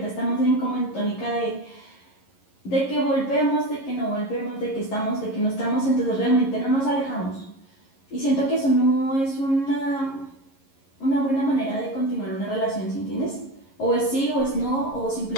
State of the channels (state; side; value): late; right; 11 ms